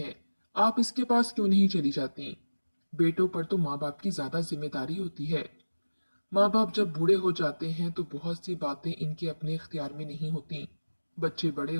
आप इसके पास क्यों नहीं चली जाती? बेटों पर तो माँ बाप की ज्यादा जिम्मेदारी होती है। माँ बाप जब बूढ़े हो जाते हैं तो बहुत सी बातें इनके अपने इख्तियार में नहीं होती। बच्चे बड़े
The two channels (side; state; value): both; inverted; correlation -1.00